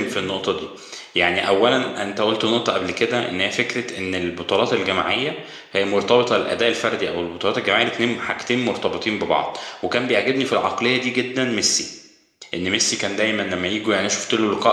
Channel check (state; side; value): identical; both; correlation 1.00